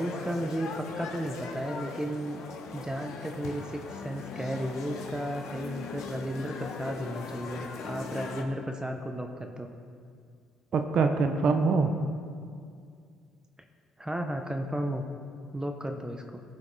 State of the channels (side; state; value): both; normal; correlation 0.79